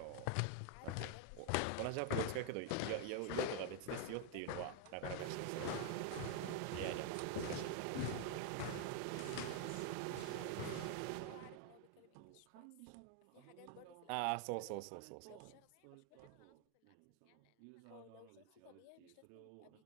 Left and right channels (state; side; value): different; both; correlation 0.00